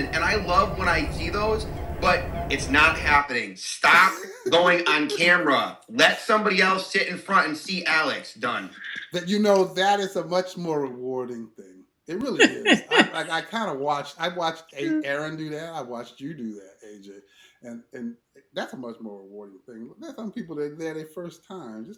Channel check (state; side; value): identical; both; correlation 1.00